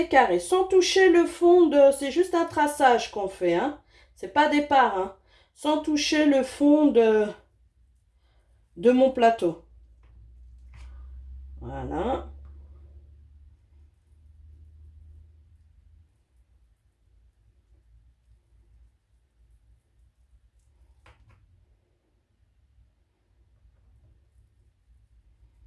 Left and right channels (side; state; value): both; identical; correlation 1.00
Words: carrés sans toucher le fond de... C'est juste un traçage qu'on fait, hein. C'est pas des parts, hein. Sans toucher le fond de mon plateau. Voilà.